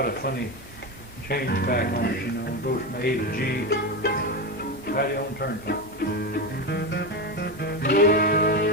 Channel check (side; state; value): both; normal; correlation 0.17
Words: a funny change back on it, you know, it goes from A to G. Patty on the Turnpike.